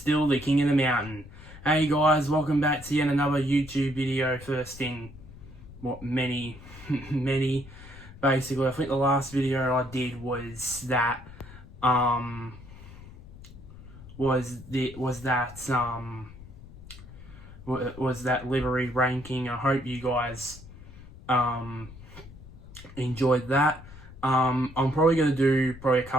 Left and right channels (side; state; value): left; noise; rumble, 17 dB below the sound